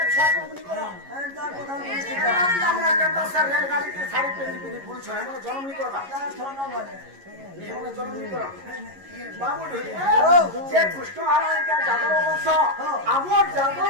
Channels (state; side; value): late; left; 11 ms